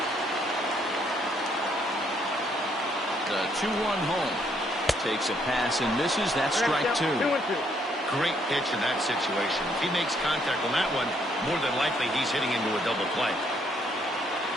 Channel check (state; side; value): normal; both; correlation 0.70